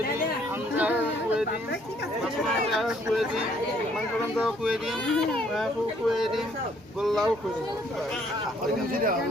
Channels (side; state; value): both; normal; correlation 0.65